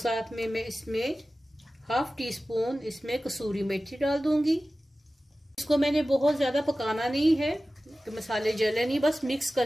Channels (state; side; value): normal; both; correlation 0.96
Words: में मैं इसमें 1/2 टीस्पून इसमें कसूरी मेथी डाल दूंगी। इसको मैंने बहुत ज्यादा पकाना नहीं है कि मसाले जले नहीं, बस मिक्स कर